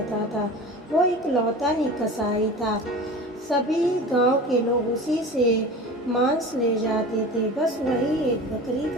था। वो एक लौता ही कसाई था। सभी गांव के लोग उसी से मांस ले जाते थे। बस वही एक बकरी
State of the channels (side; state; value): both; normal; correlation 0.35